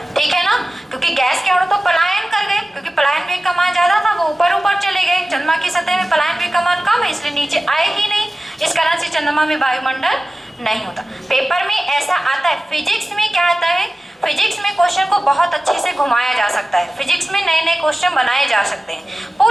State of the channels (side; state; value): both; normal; correlation 0.96